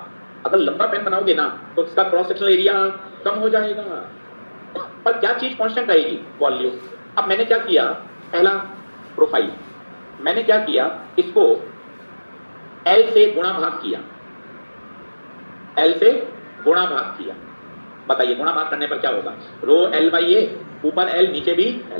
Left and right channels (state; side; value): inverted; both; correlation -1.00